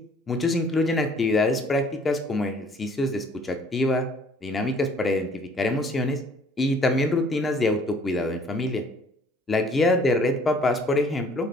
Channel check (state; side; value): normal; both; correlation 0.57